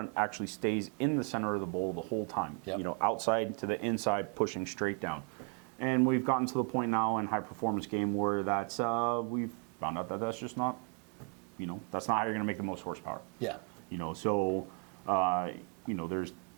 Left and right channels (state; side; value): quieter; left; 39.6 dB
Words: actually stays in the center of the bowl the whole time. Outside to the inside, pushing straight down. And we've gotten to the point now in high performance game where that's we've found out that that's just not, that's not how you're going to make the most horsepower. Yeah.